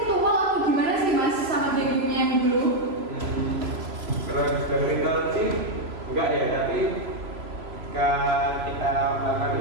atau gimana sih mas sama gengnya yang dulu? Kalau dari ritual sih enggak ya, tapi ketika kita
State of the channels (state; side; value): late; left; 3.0 ms